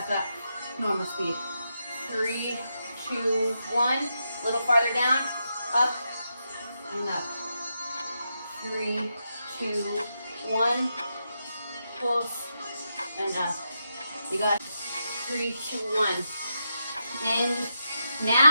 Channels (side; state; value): both; inverted; correlation -0.85